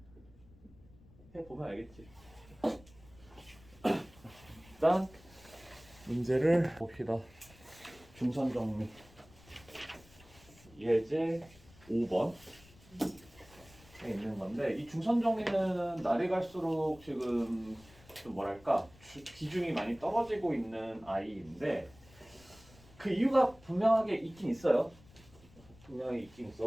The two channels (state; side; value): noise; left; rumble, 24 dB below the sound